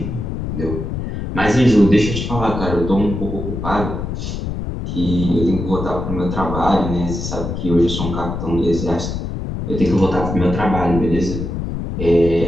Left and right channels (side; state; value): left; noise; rumble, 5 dB below the sound